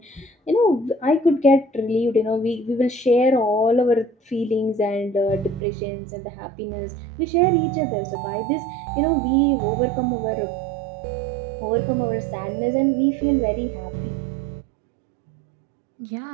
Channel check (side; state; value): left; drops out; at 5.6 s